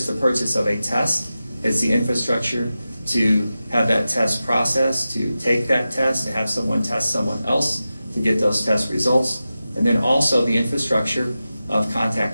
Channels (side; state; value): both; inverted; correlation -0.93